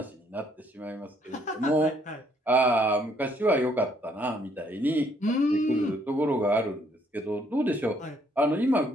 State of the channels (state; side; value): normal; both; correlation 0.67